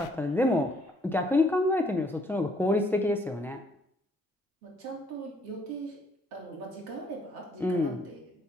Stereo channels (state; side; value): normal; both; correlation 0.66